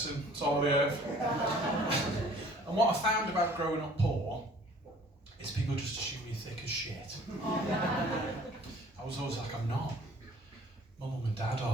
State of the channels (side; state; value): both; normal; correlation 0.53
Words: salt of the earth. And what I found about growing up poor is people just assume you're thick as shit. I was always like, I'm not. My mum and dad